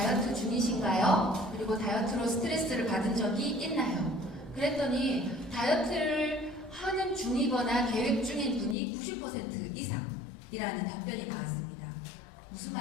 중이신가요? 그리고 다이어트로 스트레스를 받은 적이 있나요? 그랬더니 다이어트를 하는 중이거나 계획 중인 분이 90% 이상이라는 답변이 나왔습니다. 무슨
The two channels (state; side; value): drops out; right; at 8.8 s